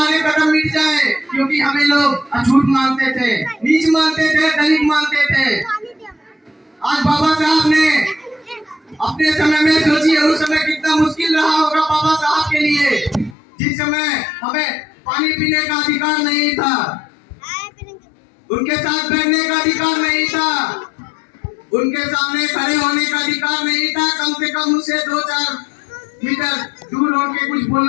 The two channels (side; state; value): right; drops out; at 13.4 s